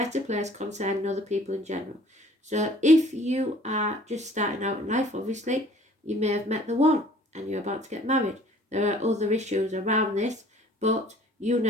place concerning other people in general. So if you are just starting out in life, obviously, you may have met the one and you're about to get married. There are other issues around this, but you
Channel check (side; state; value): both; normal; correlation 0.53